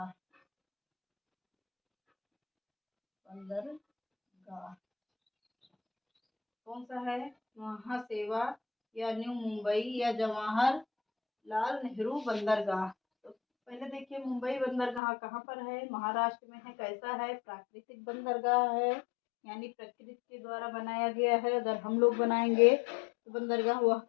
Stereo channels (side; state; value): right; drops out; at 15.0 s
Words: कौन सा है, महासेवा या न्यू मुंबई या जवाहरलाल नेहरू बंदरगाह। तो पहले देखिए मुंबई बंदरगाह कहाँ पर है, महाराष्ट्र में है। कैसा है, प्राकृतिक बंदरगाह है, यानी प्रकृति के द्वारा बनाया गया है। अगर हम लोग बनाएंगे तो बंदरगाह वह